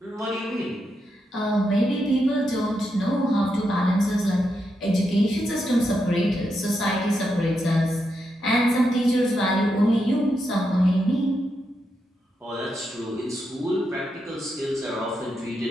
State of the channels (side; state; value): both; normal; correlation 0.84